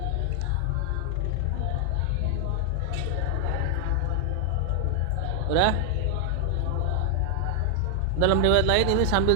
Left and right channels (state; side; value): different; both; correlation 0.00